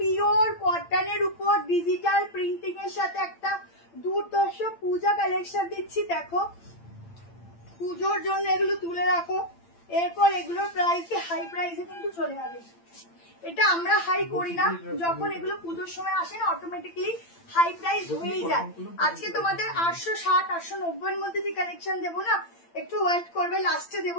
কটনের উপর ডিজিটাল প্রিন্টিং এর সাথে একটা দুর্ধর্ষ পূজা কালেকশন দিচ্ছি, দেখো। পুজোর জন্য এগুলো তুলে রাখো, এরপর এগুলোর প্রাইসে হাই প্রাইসে কিন্তু চলে যাবে। এটা আমরা হাই করি না, যখন এগুলো পুজোর সময় আসে না অটোমেটিকলি হাই প্রাইস হয়েই যায়। আজকে তোমাদের 860 890 এর মধ্যে যে কালেকশন দেবো না, একটু ওয়েট করবে, লাস্টে দেবো।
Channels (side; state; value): right; late; 8.8 ms